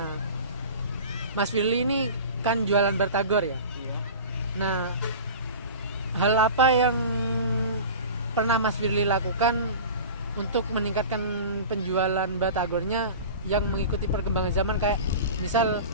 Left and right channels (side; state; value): both; inverted; correlation -0.36